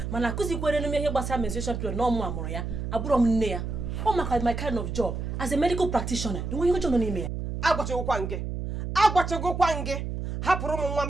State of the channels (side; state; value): right; noise; hum, 4 dB below the sound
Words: mana akụzikwere n'ime ihe gbasara menstruation period na ọmụ amụrụ ya abụrụ m nne ya. Ọ maka my kind of job as a medical practitioner. Enweghị ọjọọ nọ n'ime ya. Agwachagokwa gị hapụrụ m nwa